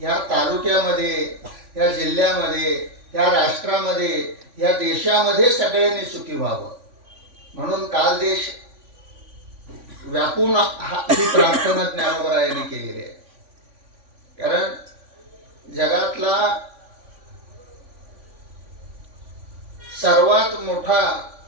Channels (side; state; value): left; late; 3.5 ms